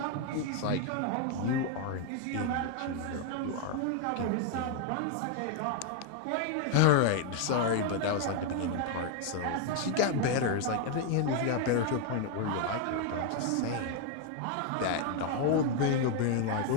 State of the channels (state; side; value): different; both; correlation 0.01